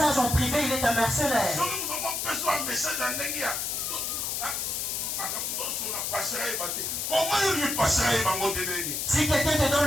en privé, il est un mercenaire. Si quelqu'un te donne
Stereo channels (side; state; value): left; noise; hiss, 1 dB below the sound